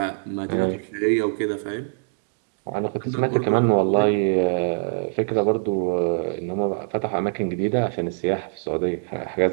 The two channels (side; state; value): left; silent; digital silence